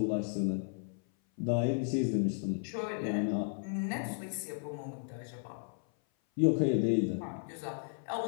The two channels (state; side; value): silent; right; 55 dB below the other